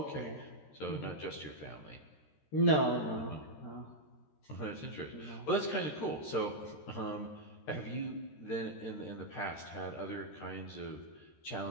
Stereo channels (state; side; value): late; right; 13 ms